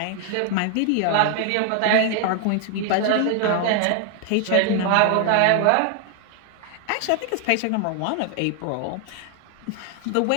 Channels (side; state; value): both; different; correlation 0.00